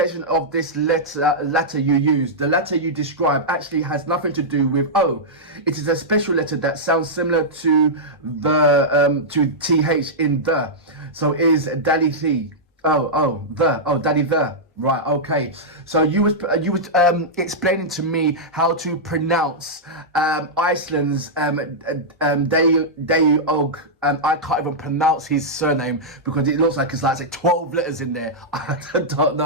of this letter you use, the letter you describe, actually has nothing to do with O. It is a special letter that sounds similar to the to TH in the. So is Deli the. Daddy the. Right, okay. So you was explaining to me how to pronounce Iceland's Deog. I can't even pronounce his surname because it looks like it's like 12 letters in there. I don't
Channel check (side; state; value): both; normal; correlation -0.09